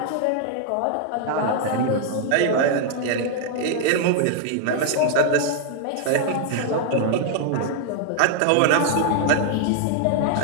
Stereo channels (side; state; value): both; different; correlation -0.01